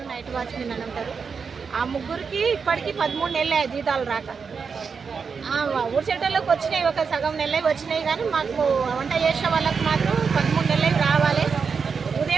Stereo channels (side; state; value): left; quieter; 5.7 dB